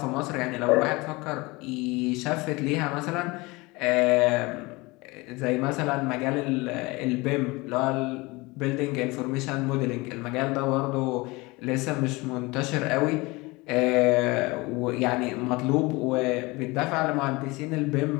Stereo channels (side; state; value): right; quieter; 23.7 dB